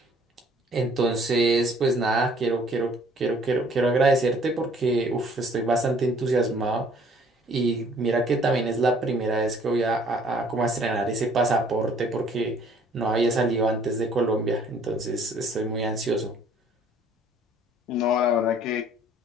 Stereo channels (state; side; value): normal; both; correlation 0.58